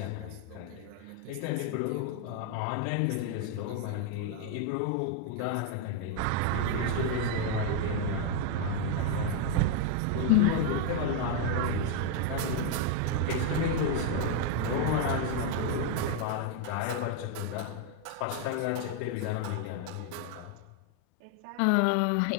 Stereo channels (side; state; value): both; different; correlation 0.01